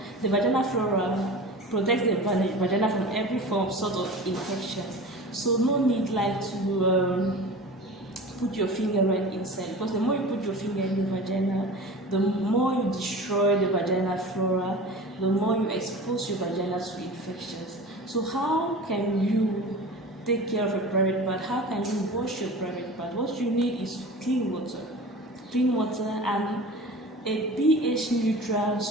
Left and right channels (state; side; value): normal; both; correlation 0.35